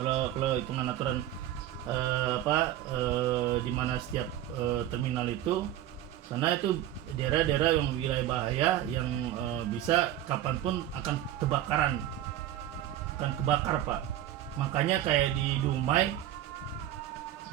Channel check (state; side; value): quieter; left; 12.4 dB